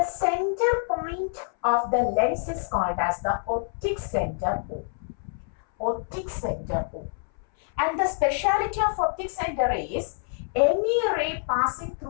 center point of the lens is called as the optic center O. Optic center O. And the speciality of optic center is any ray passing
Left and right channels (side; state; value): right; silent; 58 dB below the other